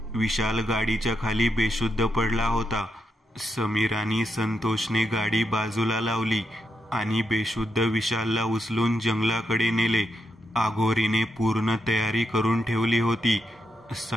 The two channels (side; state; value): both; normal; correlation 0.83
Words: विशाल गाडीच्या खाली बेशुद्ध पडला होता. समीर आणि संतोषने गाडी बाजूला लावली आणि बेशुद्ध विशालला उचलून जंगलाकडे नेले. आघोरीने पूर्ण तयारी करून ठेवली होती.